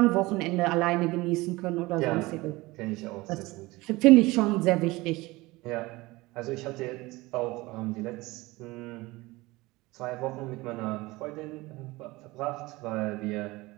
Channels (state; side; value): quieter; left; 21.1 dB